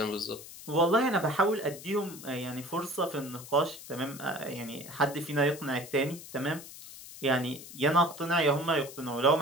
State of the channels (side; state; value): left; noise; hiss, 15 dB below the sound